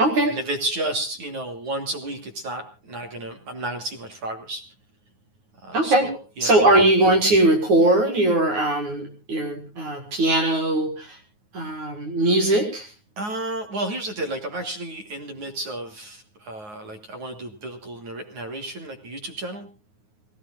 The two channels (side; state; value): left; late; 9.5 ms